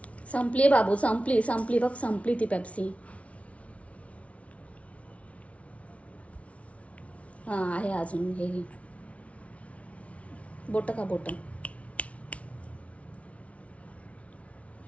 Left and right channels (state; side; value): late; right; 0.064 ms